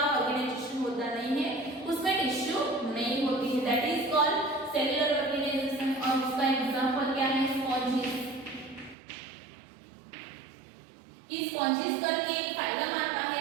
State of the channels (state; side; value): drops out; left; at 9.0 s